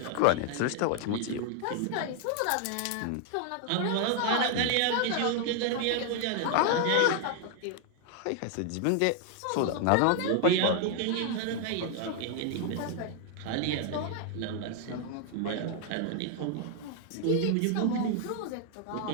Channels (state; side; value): different; both; correlation 0.00